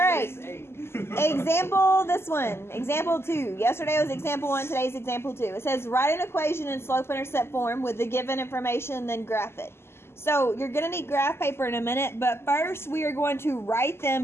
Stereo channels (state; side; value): late; right; 0.12 ms